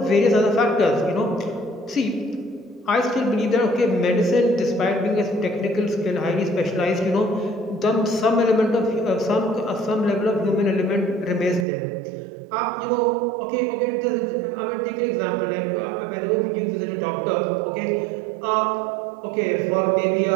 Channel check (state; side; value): drops out; left; at 11.7 s